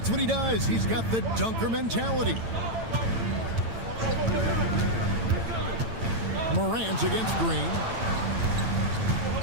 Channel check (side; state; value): left; late; 8.9 ms